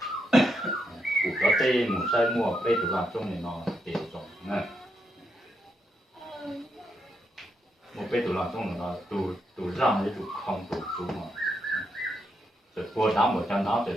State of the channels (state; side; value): normal; both; correlation 0.81